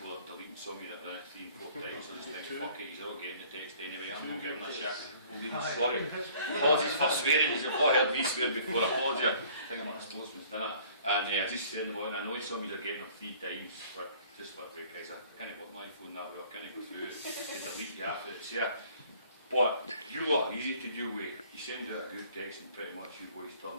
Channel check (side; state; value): both; inverted; correlation -0.55